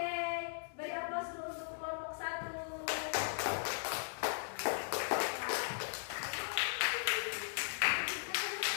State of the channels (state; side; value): silent; right; digital silence